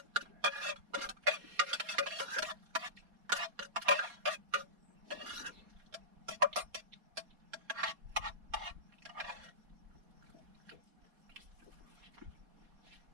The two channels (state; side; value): late; left; 4.2 ms